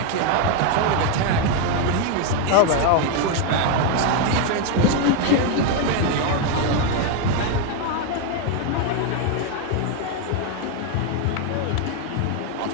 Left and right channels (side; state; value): both; different; correlation 0.01